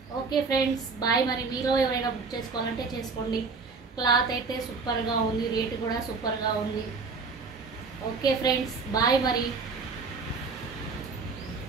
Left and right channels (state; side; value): quieter; left; 4.5 dB